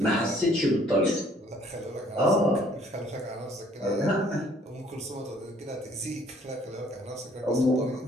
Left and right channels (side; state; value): both; normal; correlation 0.60